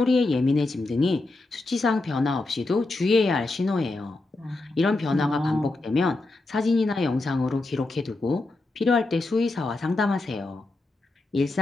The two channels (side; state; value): right; quieter; 3.1 dB